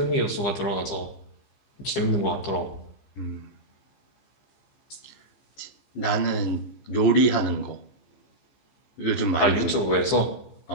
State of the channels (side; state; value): right; late; 15 ms